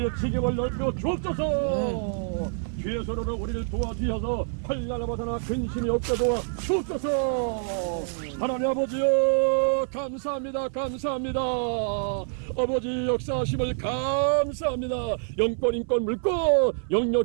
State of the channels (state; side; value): silent; left; 61 dB below the other